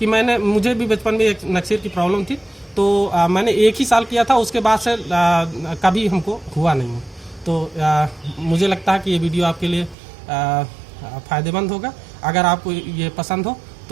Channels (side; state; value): left; drops out; at 10.0 s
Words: मुझे भी बचपन में एक नक्सीर की प्रॉब्लम थी, तो मैंने 1 ही साल किया था, उसके बाद से कभी हमको हुआ नहीं। तो मुझे लगता है कि ये वीडियो आपके लिए फ़ायदेमंद होगा। अगर आपको ये पसंद हो